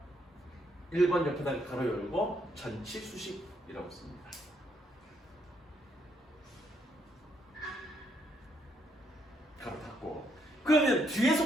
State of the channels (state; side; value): normal; both; correlation 0.74